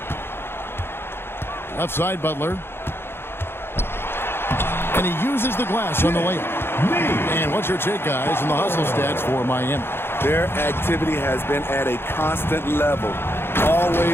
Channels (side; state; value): right; late; 0.11 ms